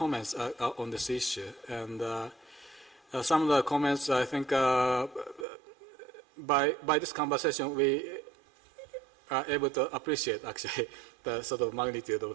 on this issue. And some of the comments, I think, by this conversation, we are able to appreciate actually the sort of magnitude of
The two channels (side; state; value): left; drops out; at 5.5 s